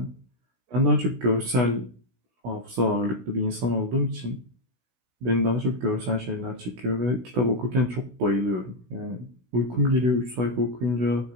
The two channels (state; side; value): late; left; 16 ms